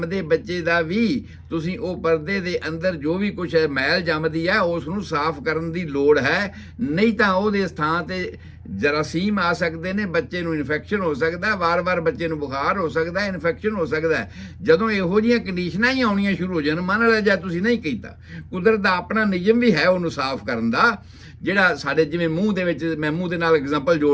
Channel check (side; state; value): both; identical; correlation 1.00